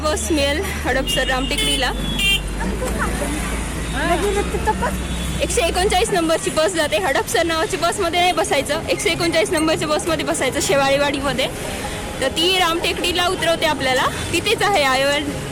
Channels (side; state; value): both; identical; correlation 1.00